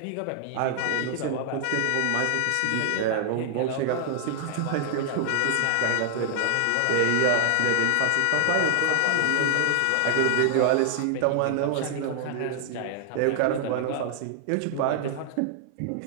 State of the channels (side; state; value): both; different; correlation 0.00